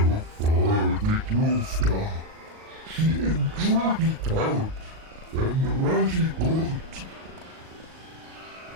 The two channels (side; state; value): left; late; 38 ms